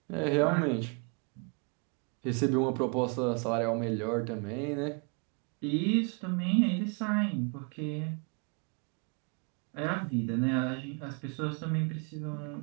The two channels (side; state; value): left; quieter; 36.0 dB